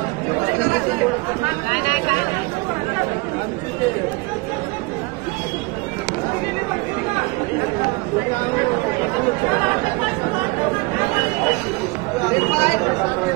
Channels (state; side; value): quieter; left; 25.4 dB